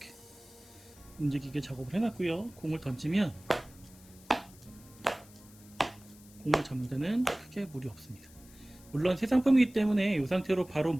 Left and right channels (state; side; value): noise; left; hiss, 23 dB below the sound